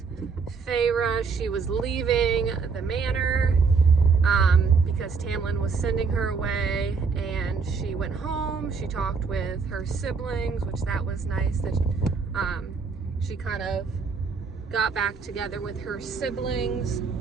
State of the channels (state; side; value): quieter; left; 5.1 dB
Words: Feyre. She was leaving the manor because Tamlin was sending her away, and she went home. She talked with her siblings, which that was nice, that she kind of got back together with her siblings.